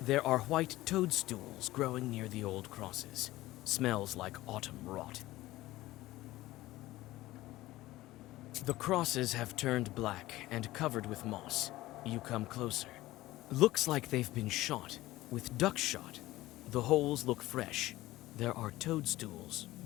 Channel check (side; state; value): right; quieter; 17.2 dB